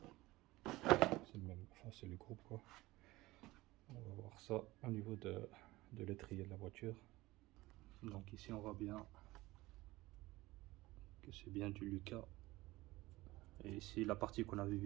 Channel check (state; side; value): quieter; left; 19.2 dB